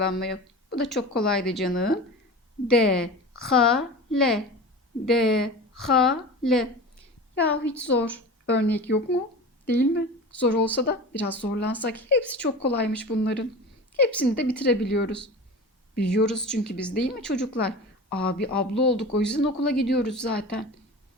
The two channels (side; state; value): both; normal; correlation 0.33